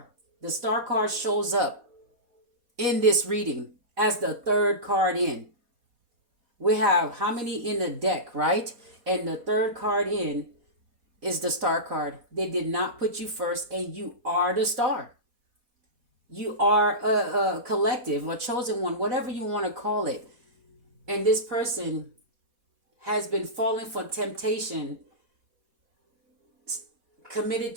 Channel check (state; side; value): late; left; 4.2 ms